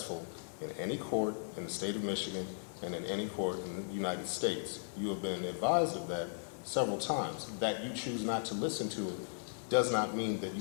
in any court in the state of Michigan and in any court in the United States. You have been advised of that several times. That you choose not to listen to it does not mean that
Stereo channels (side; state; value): right; silent; 53 dB below the other